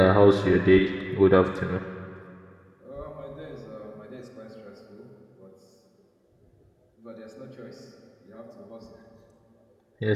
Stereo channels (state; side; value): identical; both; correlation 1.00